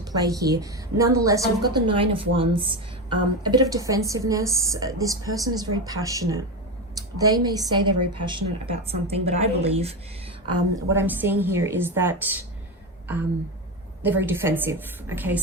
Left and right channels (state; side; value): normal; both; correlation 0.17